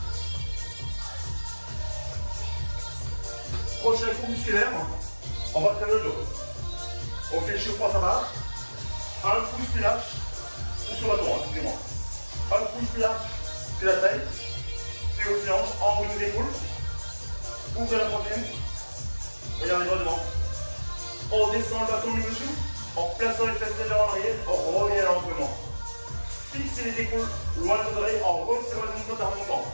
Prochain coup musculaire, on va faire le dos. On fait le chiot-poids à barre. Un pouce plus large, ou sur le bâton, excusez-moi. Un pouce plus large que la taille, puis aux hanches, en haut de l'épaule. Ouvrez la poitrine. Regardez droit devant. On descend le bâton du dessous, en plaçant les fesses légèrement en arrière, on revient lentement. Fixez les épaules loin de vos oreilles en resserrant les ongles en remontant.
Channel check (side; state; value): both; inverted; correlation -1.00